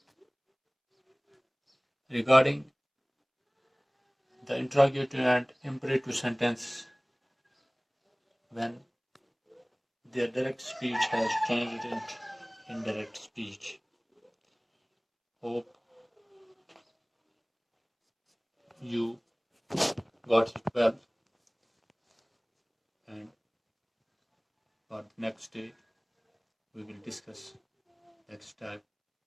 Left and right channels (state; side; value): identical; both; correlation 1.00